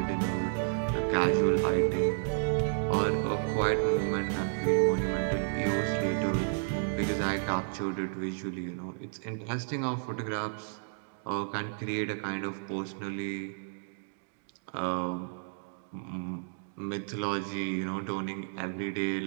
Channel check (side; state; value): left; silent; digital silence